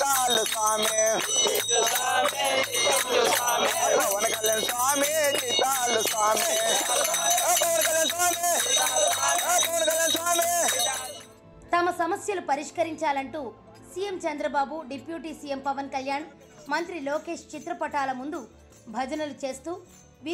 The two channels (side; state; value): both; identical; correlation 1.00